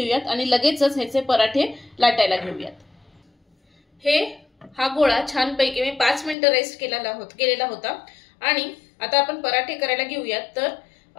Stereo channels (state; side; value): drops out; right; at 6.4 s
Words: आणि लगेचच ह्याचे पराठे लाटायला घेऊयात। हा गोळा छानपैकी मी 5 मिनिटं रेस्ट केलेला होता आणि आता आपण पराठे करायला घेऊयात। तर